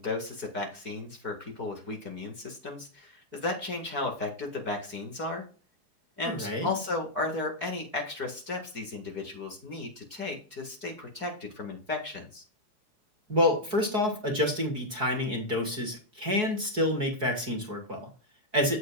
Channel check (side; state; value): left; late; 4.7 ms